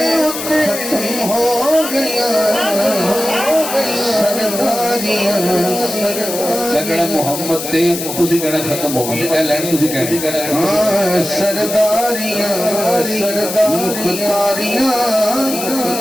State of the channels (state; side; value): noise; left; hiss, 6 dB below the sound